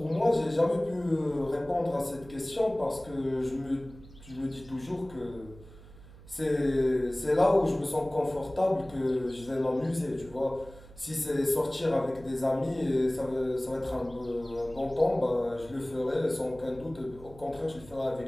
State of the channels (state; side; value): noise; right; hum, 20 dB below the sound